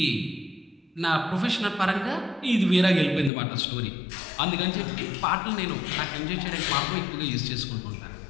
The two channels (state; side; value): drops out; right; at 3.3 s